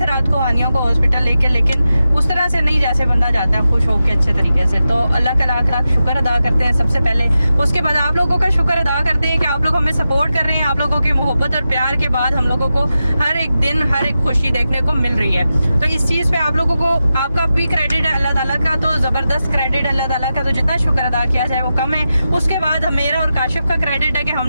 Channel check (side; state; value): both; inverted; correlation -0.91